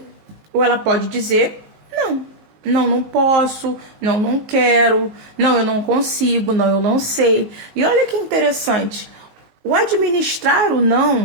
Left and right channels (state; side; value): late; left; 19 ms